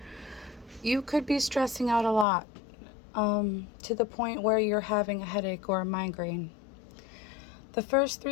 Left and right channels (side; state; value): right; drops out; at 2.2 s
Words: you could be stressing out a lot, to the point where you're having a headache or a migraine. The first